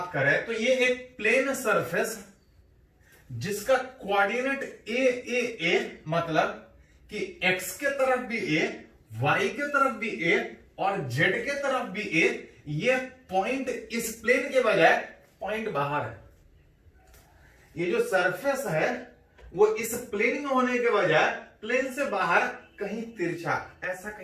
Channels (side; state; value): both; identical; correlation 1.00